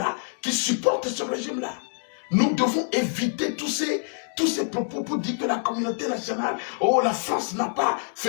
qui supporte ce régime-là. Nous devons éviter tous ces propos pour dire que la communauté nationale, oh, la France n'a pas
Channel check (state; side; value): silent; right; digital silence